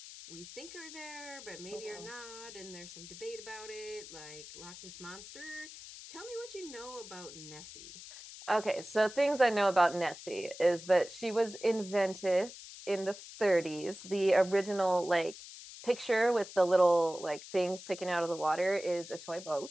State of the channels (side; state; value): left; noise; hiss, 14 dB below the sound